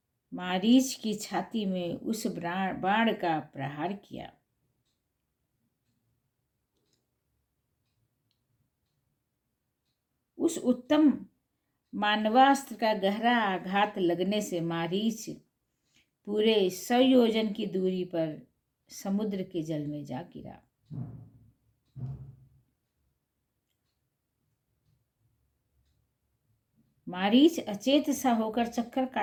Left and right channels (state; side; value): identical; both; correlation 1.00